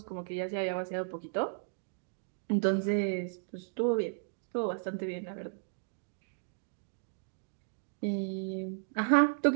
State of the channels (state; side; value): silent; left; digital silence